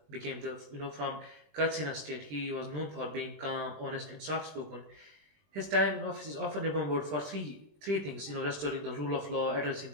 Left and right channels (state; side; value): late; left; 20 ms